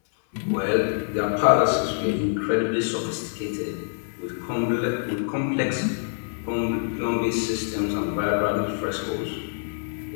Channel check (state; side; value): silent; right; 61 dB below the other